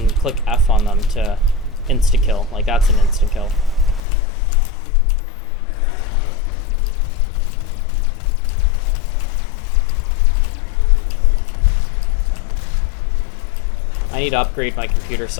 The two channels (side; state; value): right; drops out; at 4.0 s